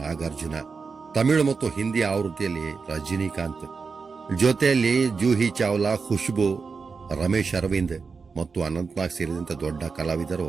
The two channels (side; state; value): left; quieter; 4.9 dB